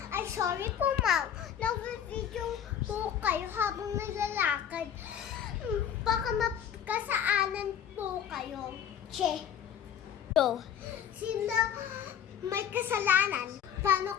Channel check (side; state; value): right; quieter; 9.1 dB